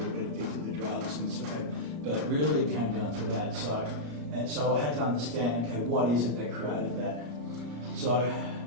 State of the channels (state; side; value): late; left; 34 ms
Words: get addicted to drugs and stuff, but really it came down to that. So I had to understand, okay, what is it that created that? So